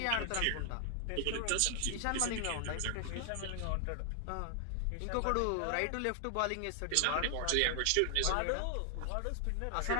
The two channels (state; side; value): different; both; correlation 0.00